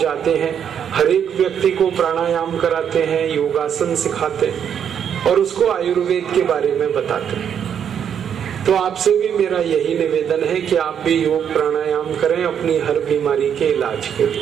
हैं, हर एक व्यक्ति को प्राणायाम कराते हैं, योगासन सिखाते हैं और उसको आयुर्वेद के बारे में बताते हैं। तो आपसे भी मेरा यही निवेदन है कि आप भी योग प्राणायाम करें अपनी हर बीमारी के इलाज के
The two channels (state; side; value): quieter; left; 8.4 dB